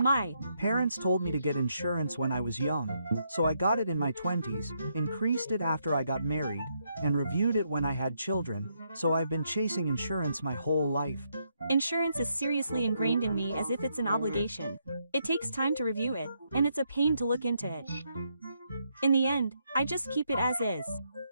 parents told me to get insurance when I was young, so I got it in my 20s, increased it after I got married, and reviewed it when I had children, so I've been chasing insurance my whole life. insurance is seriously ingrained in me as if it's an obligation. It takes time to review it, and it's a pain to look into it. In the end, I just keep it as is.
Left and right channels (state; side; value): inverted; both; correlation -0.77